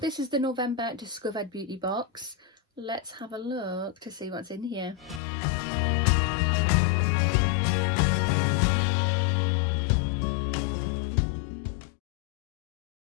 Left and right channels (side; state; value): right; drops out; at 5.2 s